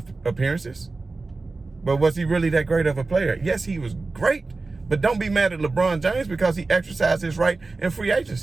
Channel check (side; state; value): left; quieter; 3.6 dB